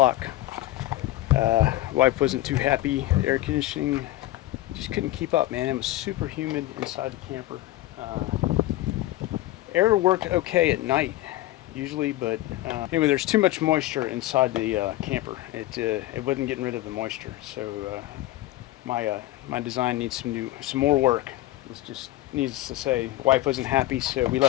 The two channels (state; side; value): quieter; right; 16.0 dB